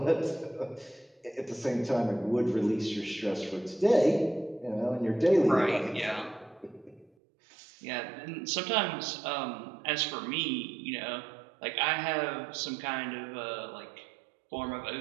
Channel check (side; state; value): left; drops out; at 7.1 s